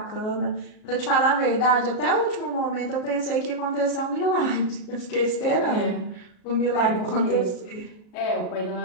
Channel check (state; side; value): late; right; 37 ms